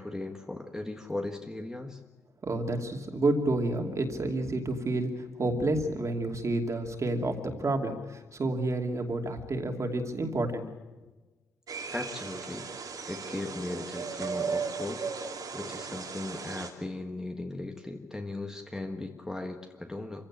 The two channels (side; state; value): both; normal; correlation 0.78